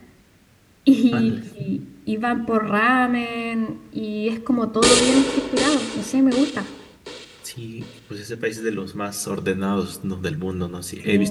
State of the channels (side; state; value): both; identical; correlation 1.00